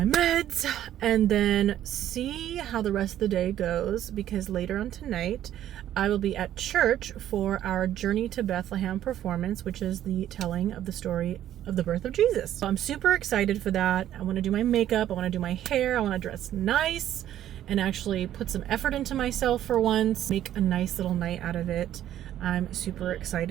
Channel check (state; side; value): quieter; left; 11.9 dB